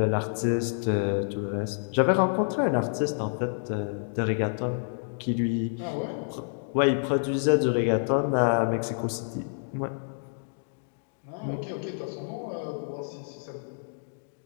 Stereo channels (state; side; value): silent; right; digital silence